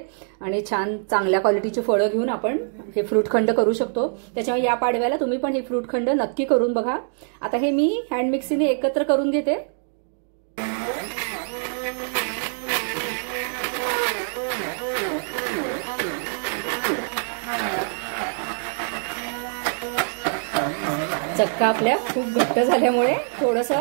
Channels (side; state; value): left; silent; 61 dB below the other